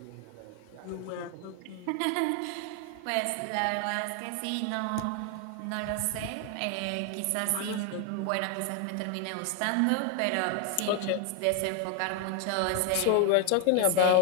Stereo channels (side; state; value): both; different; correlation 0.01